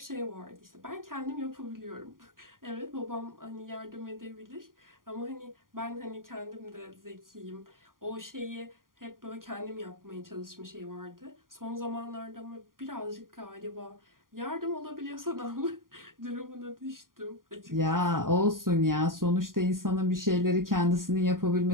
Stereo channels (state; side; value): late; left; 0.91 ms